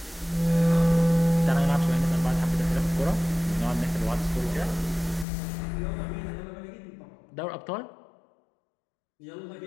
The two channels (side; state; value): right; drops out; at 5.2 s